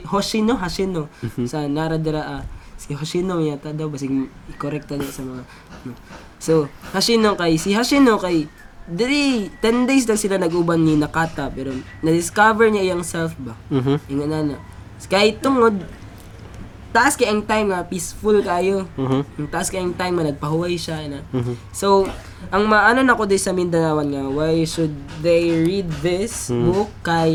Hoshino sa Naradara si Hoshino yata daw basig i-correct daw sa mga so Hoshino kay diri 10 days lang sila nag-uban ni Nakata pero na-discover niya iyang self ba. Ingon na. Kay tungod taas kay ang time nga peaceful kayo. Yung taas kay ang time nga nagpahuway siya na. So ang maano nako di sa Mindanawan nga why should they read this book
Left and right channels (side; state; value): both; identical; correlation 1.00